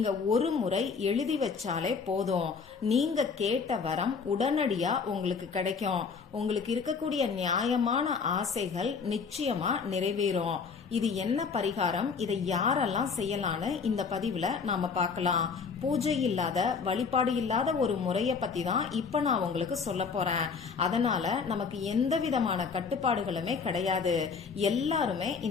ஒரு முறை எழுதி வச்சாலே போதும். நீங்க கேட்ட வரம் உடனடியா உங்களுக்கு கிடைக்கும். உங்களுக்கு இருக்கக்கூடிய நியாயமான ஆசைகள் நிச்சயமா நிறைவேறும். இது என்ன பரிகாரம், இதை யாரெல்லாம் செய்யலான்னு இந்த பதிவுல நாம பார்க்கலாம். பூஜை இல்லாத, வழிபாடு இல்லாத ஒரு முறைய பத்தி தான் இப்ப நான் உங்களுக்கு சொல்ல போறேன். அதனால நமக்கு எந்த விதமான கட்டுப்பாடுகளுமே கிடையாது. எல்லாருமே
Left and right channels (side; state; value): right; quieter; 5.4 dB